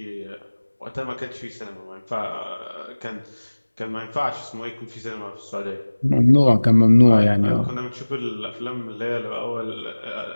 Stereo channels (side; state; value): both; inverted; correlation -1.00